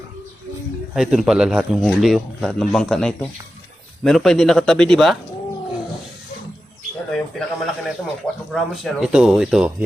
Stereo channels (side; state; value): both; normal; correlation 0.92